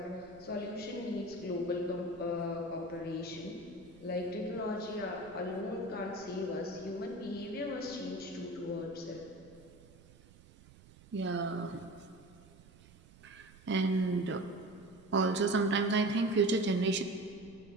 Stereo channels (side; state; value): right; noise; rumble, 23 dB below the sound